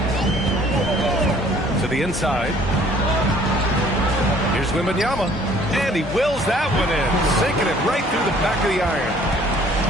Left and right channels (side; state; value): both; normal; correlation 0.56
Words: To the inside. Here's Wembanyama. And he wills that one in. Sinking it right through the back of the iron.